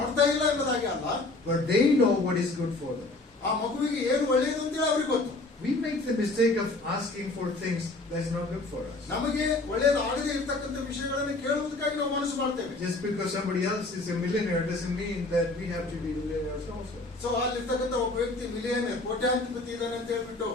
ಇಲ್ಲ ಎಂಬುದಾಗಿ ಅಲ್ಲ, but they know what is good for them. ಆ ಮಗುವಿಗೆ ಏನು ಒಳ್ಳೆಯದು ಅಂತೇಳಿ ಅವ್ರಿಗೆ ಗೊತ್ತು. We make the mistake of asking for things that's not good for us. ನಮಗೆ ಒಳ್ಳೆಯದು ಆಗದೆ ಇರ್ತಕ್ಕಂಥ ವಿಷಯಗಳನ್ನು ಕೇಳುವುದಕ್ಕಾಗಿ ನಾವು ಮನಸ್ಸು ಮಾಡ್ತೇವೆ. Just because somebody else is a millionaire doesn't mean that we have to be millionaires also. So ಅಲ್ಲಿರ್ತಕ್ಕಂಥ ಒಬ್ಬ ವ್ಯಕ್ತಿ ಮಿಲಿಯನೇರ್, ಕೋಟ್ಯಾಂಧಿಪತಿ ಇದ್ದಾನೆ ಅಂತ ಹೇಳ್ಬಿಟ್ಟು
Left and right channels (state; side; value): quieter; right; 3.0 dB